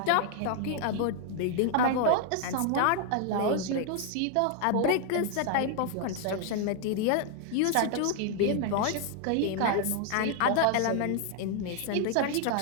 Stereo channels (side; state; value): both; different; correlation 0.00